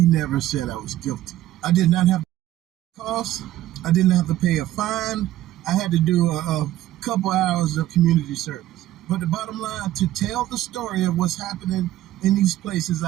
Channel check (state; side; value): quieter; left; 14.1 dB